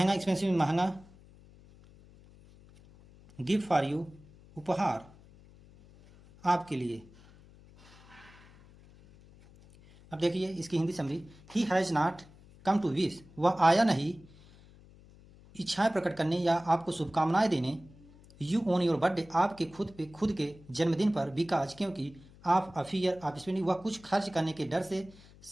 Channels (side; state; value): left; noise; hum, 24 dB below the sound